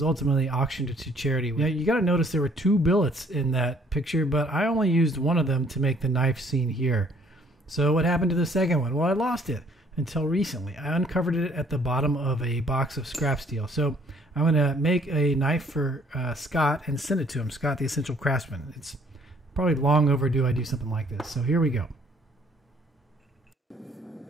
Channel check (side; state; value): both; normal; correlation 0.61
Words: ultimately auctioned to charity. Now, you got to notice there were 2 billets in that picture, but I only used one of them to make the knife seen here. So what happened to the second one? Well, I lost it until recently. I uncovered it at the bottom of a box of scrap steel. So I'm going to make a knife for Scott and send it to him, Scott the Essential Craftsman. It's probably long overdue I do something like this. So here we go.